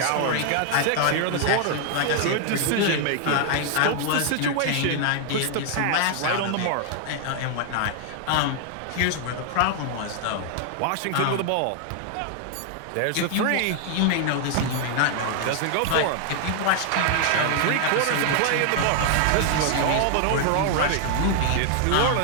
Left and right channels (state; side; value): different; both; correlation 0.00